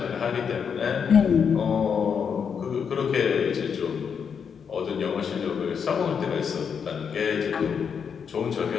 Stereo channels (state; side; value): quieter; right; 6.8 dB